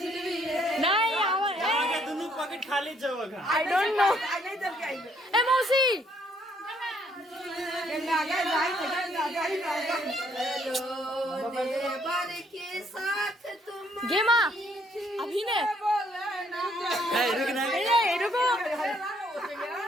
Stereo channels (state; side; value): normal; both; correlation 0.68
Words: नहीं आओ आगे दोनों पॉकेट खाली जगह। I don't know. ए मौसी गेमा अभी ने रुक ना। रुको